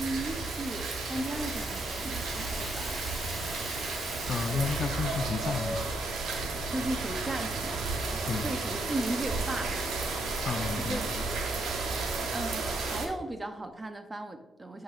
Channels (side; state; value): both; normal; correlation 0.75